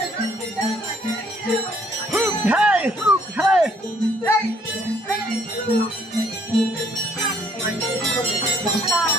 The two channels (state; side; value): normal; both; correlation 0.64